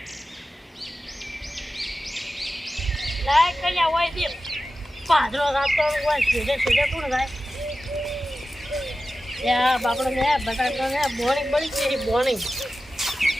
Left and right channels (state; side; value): normal; both; correlation 0.94